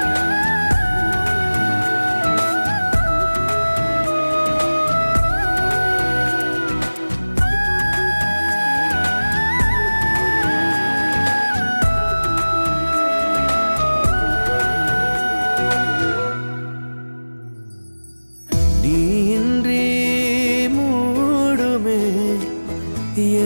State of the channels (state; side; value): inverted; both; correlation -1.00